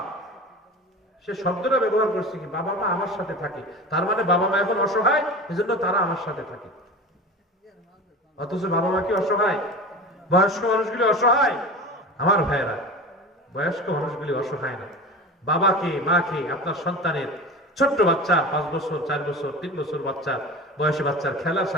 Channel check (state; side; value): normal; both; correlation 0.32